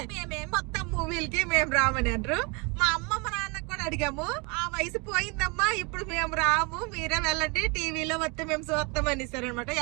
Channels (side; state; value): left; quieter; 30.1 dB